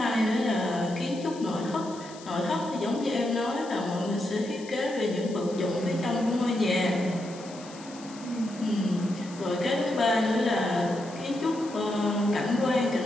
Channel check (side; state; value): left; noise; hiss, 19 dB below the sound